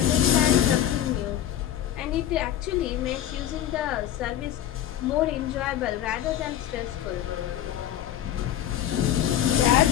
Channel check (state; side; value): quieter; right; 11.3 dB